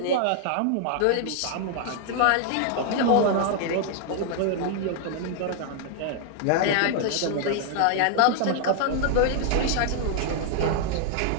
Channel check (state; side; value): different; both; correlation 0.00